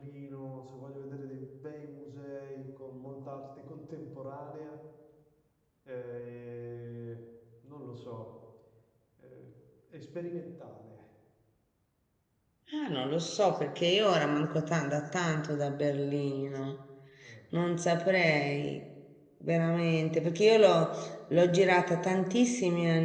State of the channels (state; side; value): identical; both; correlation 1.00